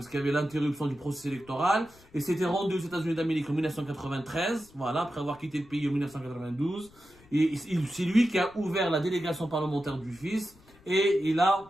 y avait l'interruption du processus électoral. Et s'était rendu aux États-Unis d'Amérique en 1993, voilà, après avoir quitté le pays en 1992. Et c'est lui qui a ouvert la délégation parlementaire du FIS et il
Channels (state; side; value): noise; left; rumble, 27 dB below the sound